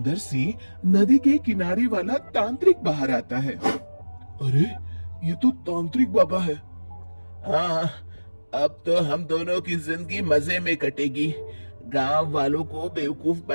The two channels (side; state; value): both; inverted; correlation -1.00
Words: से नदी के किनारे वाला तांत्रिक बाहर आता है। अरे, ये तो तांत्रिक बाबा है। हाँ, अब तो हम दोनों की जिंदगी मजे में कटेगी। गांव वालों को बेवकूफ